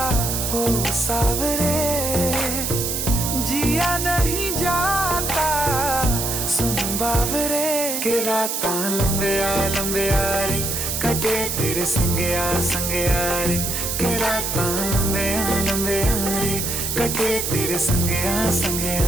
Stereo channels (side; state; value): right; noise; hiss, 2 dB below the sound